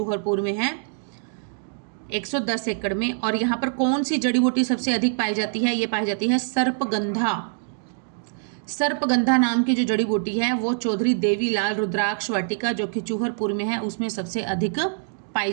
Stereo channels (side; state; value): left; silent; digital silence